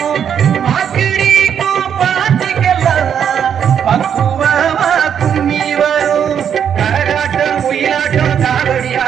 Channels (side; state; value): left; quieter; 8.4 dB